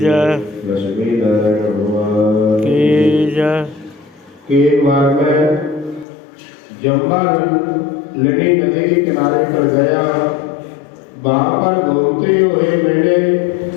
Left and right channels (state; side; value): drops out; right; at 6.1 s